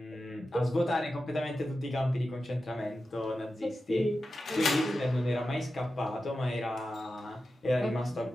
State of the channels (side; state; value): both; normal; correlation 0.92